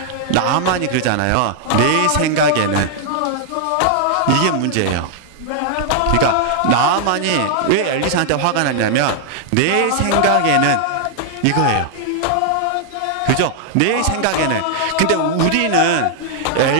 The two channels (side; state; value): both; different; correlation 0.00